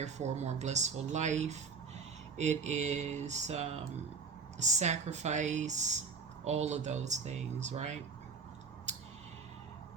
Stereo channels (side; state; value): left; quieter; 5.2 dB